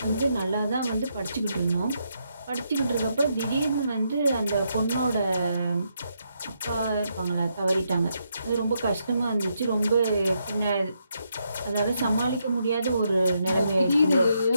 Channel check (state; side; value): inverted; both; correlation -0.79